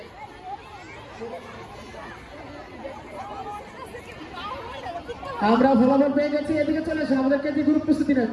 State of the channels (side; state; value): both; identical; correlation 1.00